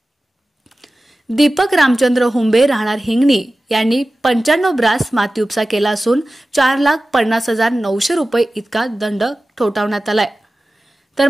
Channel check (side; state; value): both; normal; correlation 0.96